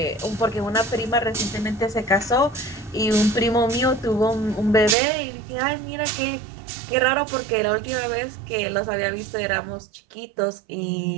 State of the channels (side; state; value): left; drops out; at 5.0 s